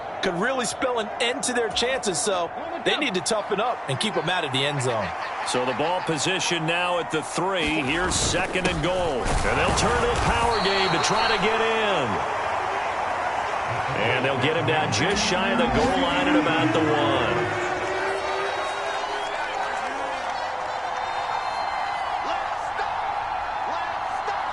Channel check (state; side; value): identical; both; correlation 1.00